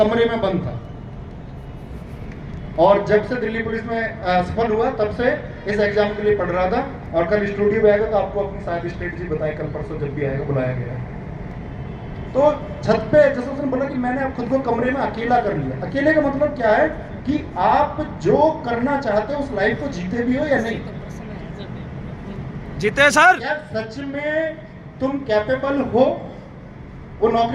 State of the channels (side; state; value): both; identical; correlation 1.00